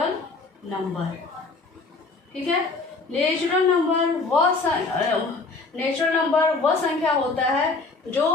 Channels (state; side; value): quieter; right; 3.8 dB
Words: नंबर, ठीक है। नेचुरल नंबर वह संख्या होता है